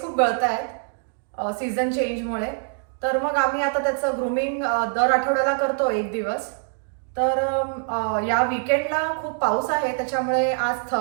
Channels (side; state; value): left; silent; 63 dB below the other